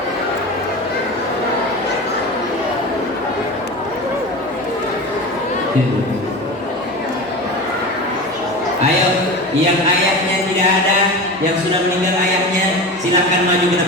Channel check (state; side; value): normal; both; correlation 0.29